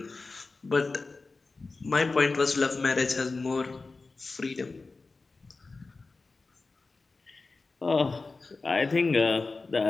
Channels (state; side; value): quieter; right; 3.8 dB